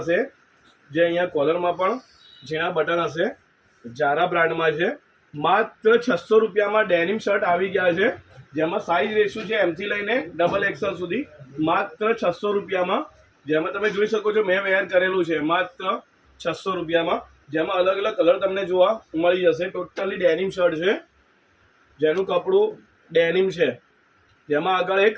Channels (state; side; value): identical; both; correlation 1.00